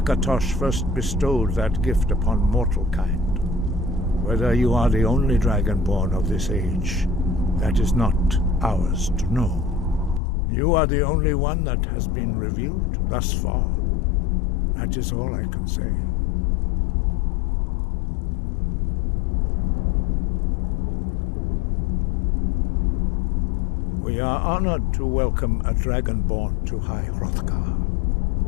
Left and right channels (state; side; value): drops out; right; at 10.2 s